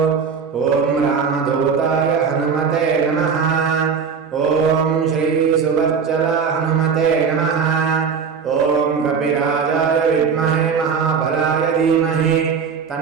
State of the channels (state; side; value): quieter; left; 6.1 dB